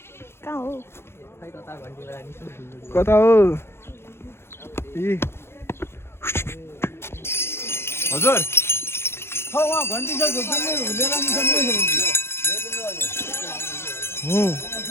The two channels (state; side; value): late; right; 0.12 ms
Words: कता हो हजुर